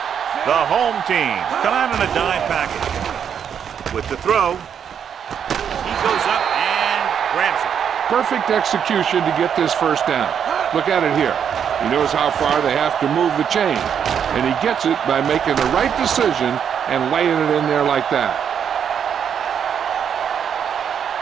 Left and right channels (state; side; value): quieter; left; 8.0 dB